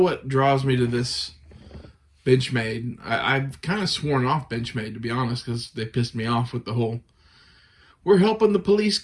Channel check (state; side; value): identical; both; correlation 1.00